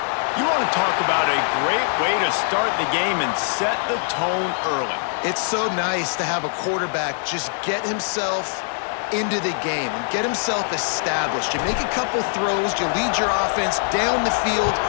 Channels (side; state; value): right; silent; digital silence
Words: You want to talk about a great way to start the game and set the tone early. It's so nice to have a quarterback just get himself into the game and get himself established. You make a couple throws, you lead your offense down the field,